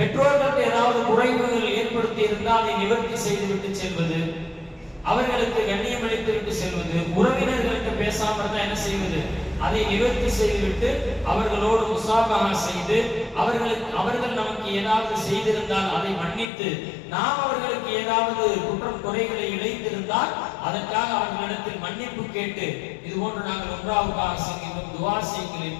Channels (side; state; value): right; drops out; at 16.4 s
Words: ஏதாவது குறைவுகள் ஏற்படுத்தி இருந்தால் அதை நிவர்த்தி செய்துவிட்டு செல்வது, அவர்களுக்கு கண்ணியம் அளித்து விட்டு செல்வது, உறவினர்களுக்கு பேசாம இருந்தா என்ன செய்வது, அதை நிவர்த்தி செய்துவிட்டு அவர்களோடு முசாபஹா செய்து, அவர்கள் நமக்கு ஏதாவது செய்திருந்தால் அதை மன்னித்து, நாம் அவர்களுக்கு ஏதாவது குற்றம் குறைகளை இழைத்திருந்தால் அதற்காக அவர்களிடத்தில் மன்னிப்பு கேட்டு, இது போன்று நாங்கள் உம்ராவுக்காக செய்கின்றோம், துஆ செய்யுங்கள்